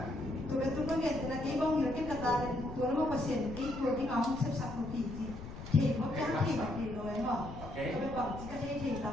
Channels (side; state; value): left; noise; rumble, 12 dB below the sound